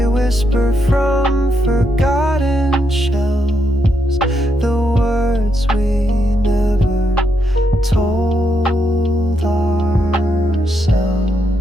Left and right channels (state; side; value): normal; both; correlation 0.80